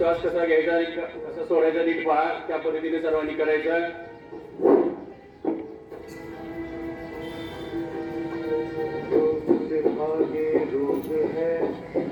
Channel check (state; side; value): identical; both; correlation 1.00